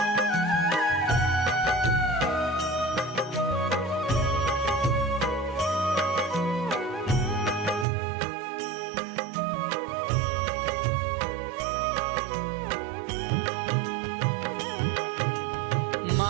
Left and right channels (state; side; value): drops out; left; at 7.9 s